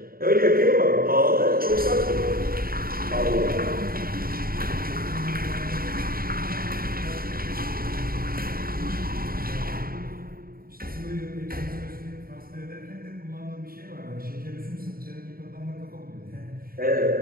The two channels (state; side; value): late; left; 0.43 ms